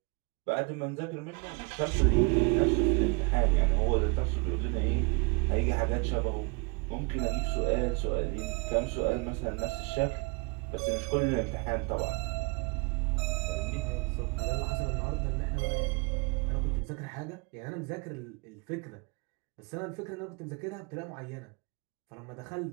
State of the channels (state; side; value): quieter; left; 30.2 dB